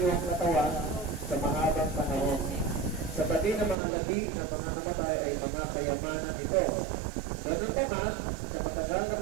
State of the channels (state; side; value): drops out; left; at 3.8 s